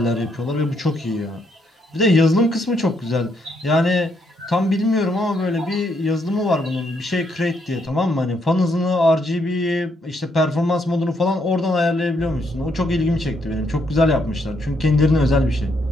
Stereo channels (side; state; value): both; normal; correlation 0.75